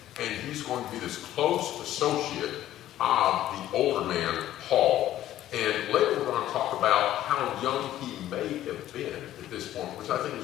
And he's going to be this close associate of the older man, Paul. And later we're going to talk about how young he may have been at this point, which I think is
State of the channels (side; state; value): right; quieter; 13.1 dB